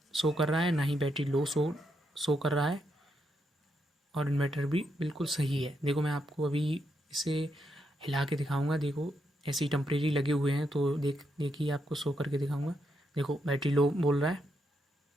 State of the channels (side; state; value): both; normal; correlation 0.80